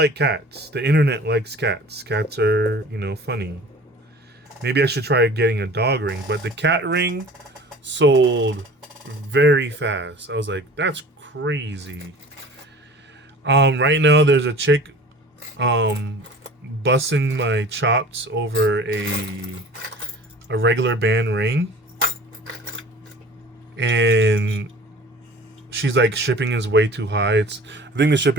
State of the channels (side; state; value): both; normal; correlation 0.44